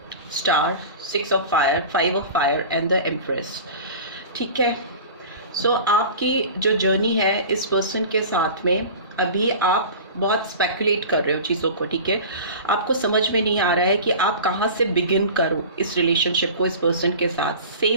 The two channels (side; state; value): both; inverted; correlation -0.36